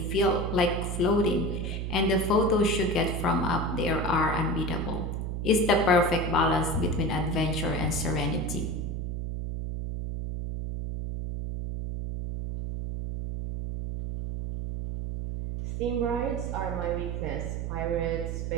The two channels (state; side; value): noise; right; hum, 3 dB below the sound